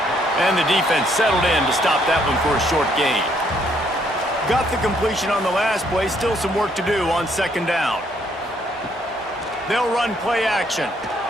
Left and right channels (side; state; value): both; normal; correlation 0.69